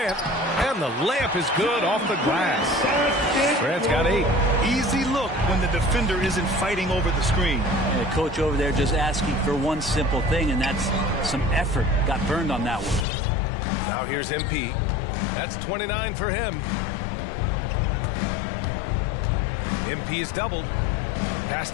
and the layup is good off the glass. Grant's got 8. Easy look when the defender isn't fighting over the screen. And the coach over there just asking for one simple thing, and that's some effort. Got burned on that one. Now here's MP. That's 29 for him. MP is doubled. Pass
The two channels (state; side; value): drops out; right; at 13.1 s